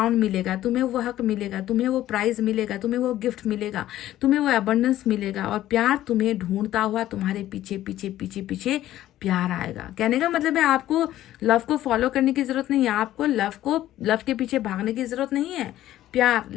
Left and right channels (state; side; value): quieter; right; 13.7 dB